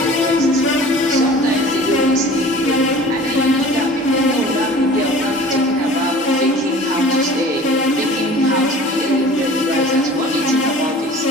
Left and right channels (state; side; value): normal; both; correlation 0.44